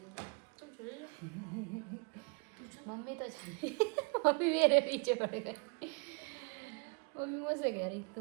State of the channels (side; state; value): left; quieter; 34.4 dB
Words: तुम चले जाओ। मम्मी तो मम्मी मेरे पीछे पड़ गई। मम्मी मुझसे कह रही